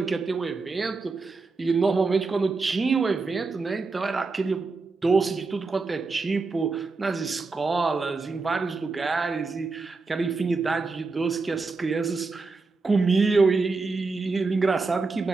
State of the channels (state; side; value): quieter; left; 4.0 dB